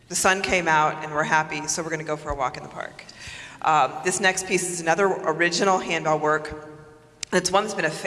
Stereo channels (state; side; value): identical; both; correlation 1.00